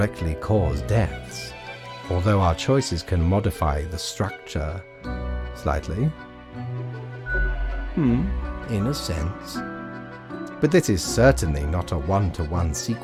cause deaths, although our choices can modify the structure slightly. In a sense. But this is certainly not a one-to-one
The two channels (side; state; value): both; identical; correlation 1.00